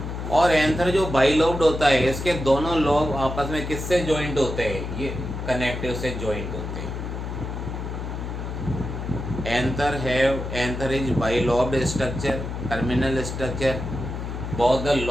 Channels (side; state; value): left; noise; hum, 6 dB below the sound